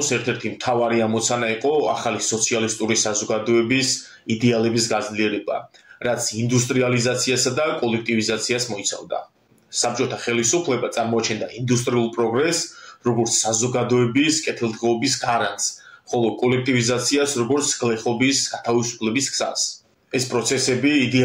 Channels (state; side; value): identical; both; correlation 1.00